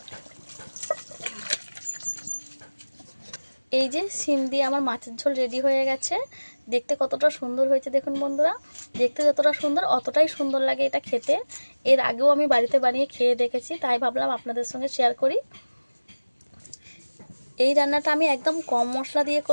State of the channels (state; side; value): inverted; both; correlation -1.00